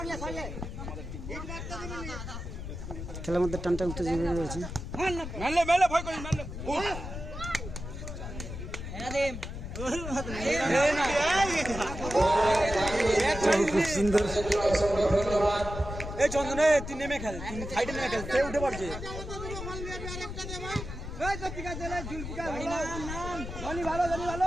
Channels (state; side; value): noise; left; rumble, 8 dB below the sound